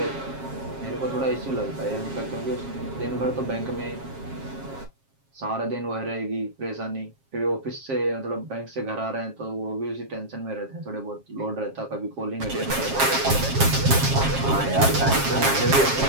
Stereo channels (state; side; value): late; left; 7.4 ms